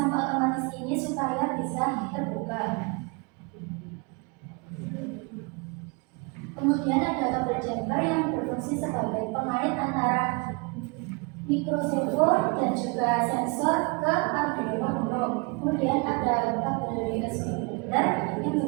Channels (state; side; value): quieter; left; 30.3 dB